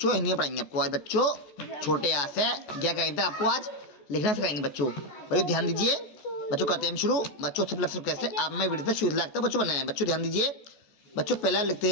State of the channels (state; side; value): late; right; 14 ms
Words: पढ़ाएंगे आपको आज बच्चों छोटे आ से क्या कहेंगे आपको आज लिखना सिखाएंगे बच्चों ध्यान दीजिए बच्चों। करते हैं शुरू बच्चों सब लफ्ज़ कैसे आप मैं वीडियो से शुरू लगता है बच्चों बनाए बच्चों ध्यान दीजिए बच्चों। पहला